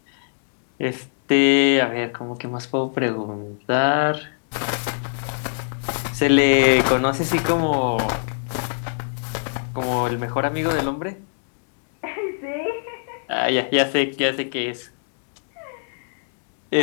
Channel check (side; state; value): right; silent; digital silence